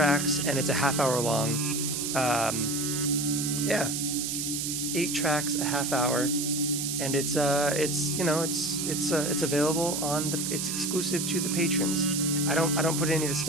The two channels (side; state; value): right; noise; hiss, 2 dB below the sound